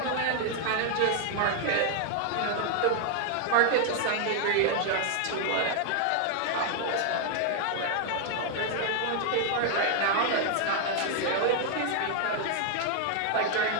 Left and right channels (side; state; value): both; different; correlation 0.00